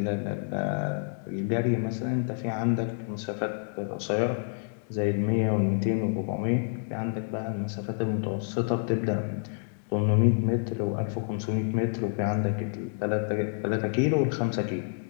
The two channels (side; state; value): right; silent; digital silence